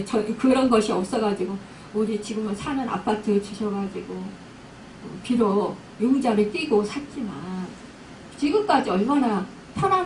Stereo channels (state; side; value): identical; both; correlation 1.00